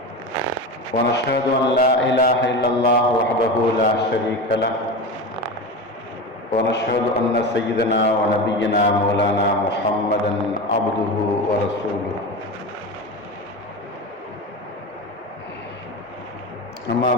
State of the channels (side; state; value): both; normal; correlation 0.24